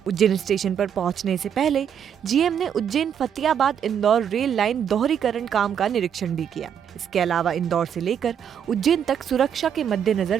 उज्जैन स्टेशन पर पहुंचने से पहले GM ने उज्जैन फतेहाबाद इंदौर रेल लाइन दोहरीकरण काम का निरीक्षण भी किया। इसके अलावा इंदौर से लेकर उज्जैन तक सुरक्षा के मद्देनजर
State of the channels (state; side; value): quieter; left; 8.4 dB